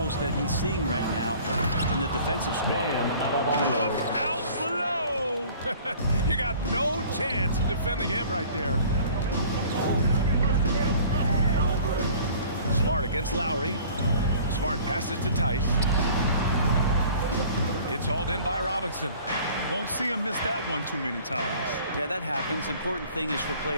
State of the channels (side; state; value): both; inverted; correlation -0.49